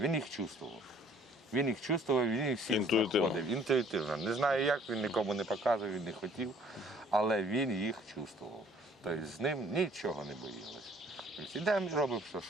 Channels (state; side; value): normal; both; correlation 0.57